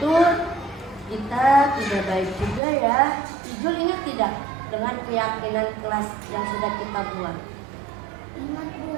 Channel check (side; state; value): left; drops out; at 2.6 s